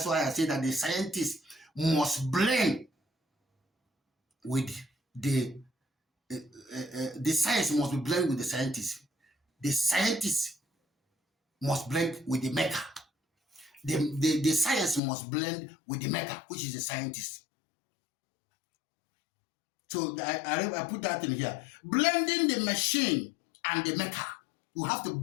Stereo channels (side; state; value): right; drops out; at 15.0 s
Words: why I say that the scientists must blend with the science must be blended with the scientists. The scientists must blend with the maker. The science must blend with the maker, which is the scientist. So I put that in here. Blending the machine and the maker. You have to